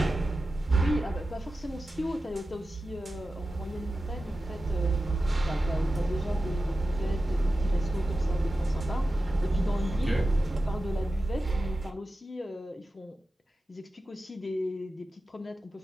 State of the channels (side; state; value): both; normal; correlation 0.93